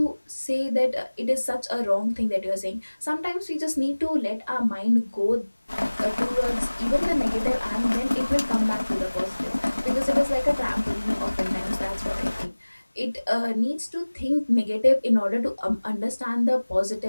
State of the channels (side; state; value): both; inverted; correlation -1.00